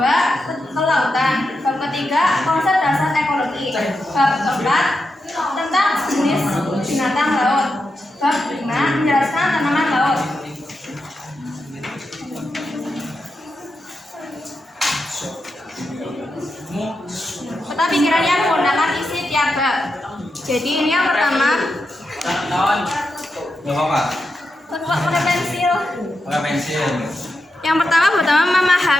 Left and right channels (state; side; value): normal; both; correlation 0.87